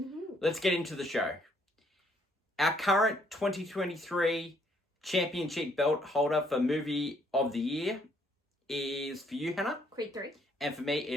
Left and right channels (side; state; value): both; normal; correlation 0.67